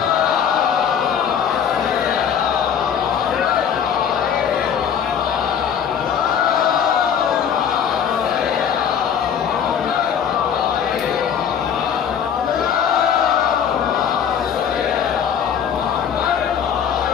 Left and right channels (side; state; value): right; quieter; 8.0 dB